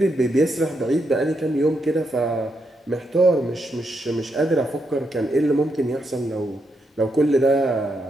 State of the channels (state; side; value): normal; both; correlation 0.81